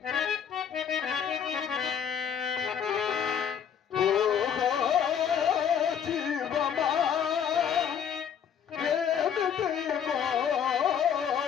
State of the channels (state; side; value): quieter; right; 8.1 dB